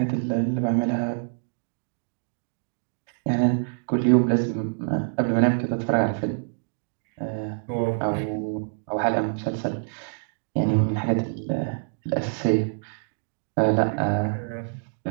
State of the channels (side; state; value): left; silent; digital silence